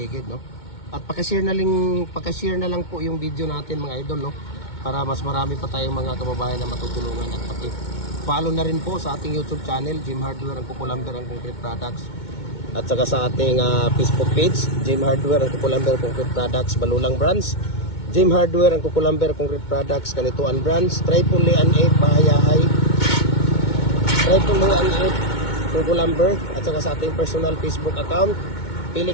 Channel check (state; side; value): late; right; 2.2 ms